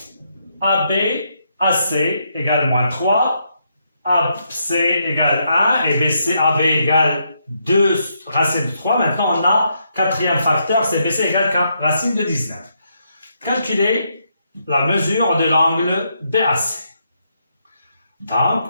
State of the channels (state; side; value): inverted; both; correlation -0.78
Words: AB AC égale moins 3, AC égale 1 et BC AB égale 2 racines de 3. Maintenant, on a quatrième facteur, c'est BC égale racine de 19. Calculer la mesure de l'angle BAC.